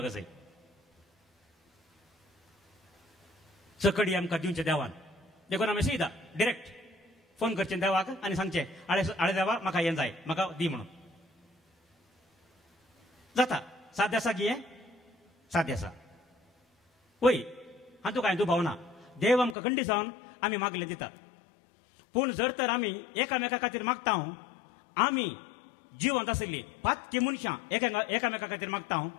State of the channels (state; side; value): drops out; right; at 19.6 s